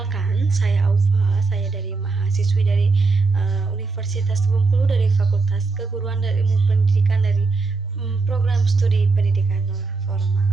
saya Aufa. Saya dari mahasiswi dari Universitas Bengkulu dari Fakultas Keguruan dan Ilmu Pendidikan dari program studi pendidikan non formal.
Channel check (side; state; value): left; quieter; 4.0 dB